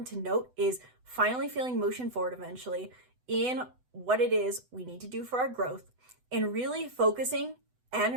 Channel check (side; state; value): left; late; 8.0 ms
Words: to note is finally feeling motion forward eventually in what it is we need to do for our growth, and really focusing